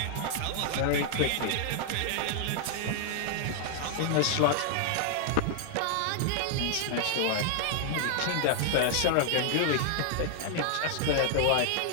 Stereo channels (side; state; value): both; different; correlation 0.00